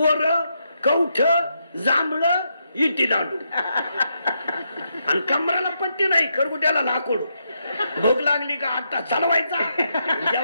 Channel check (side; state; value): both; inverted; correlation -0.81